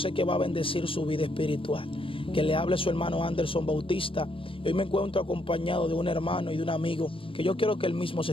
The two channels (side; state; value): right; late; 0.26 ms